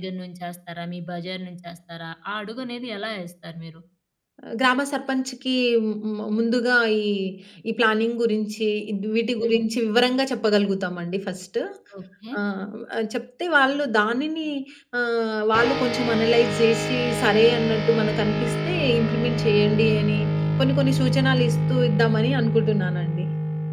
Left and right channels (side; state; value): both; identical; correlation 1.00